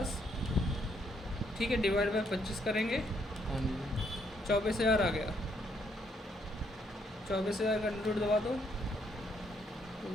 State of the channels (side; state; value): both; normal; correlation 0.72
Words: ठीक है, डिवाइड बाई 25 करेंगे, 24,000 आ गया। 24,000 का रूट दबा दो,